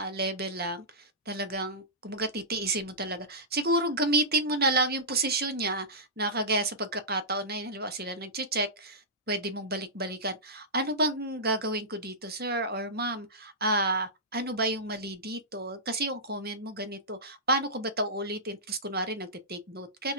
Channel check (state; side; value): normal; both; correlation -0.15